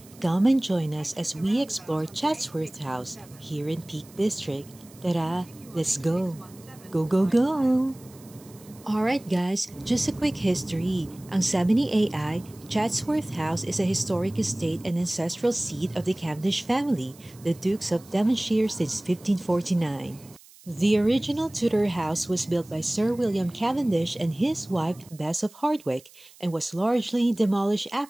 come and join us as we explore Chatsworth House here in Peak District. Tara, let's go! Go, go, go! Alright guys, just a quick history. Ang sabi ni AI, Chatsworth House is a historic estate and ancestral seat of the Cavendish family, the Dukes of Devonshire since 1549. The original Tudor house was built by Sir William Cavendish and his wife Bess of Hardwicke and was largely demolished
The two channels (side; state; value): right; noise; hiss, 24 dB below the sound